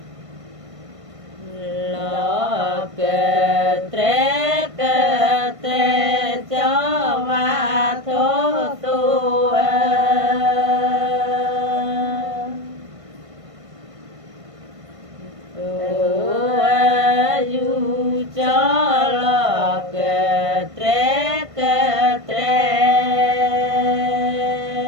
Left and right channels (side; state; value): left; late; 1.5 ms